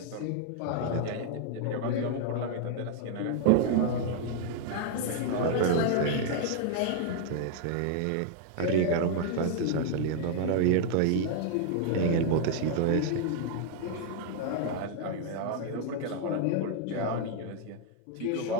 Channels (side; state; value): both; different; correlation 0.00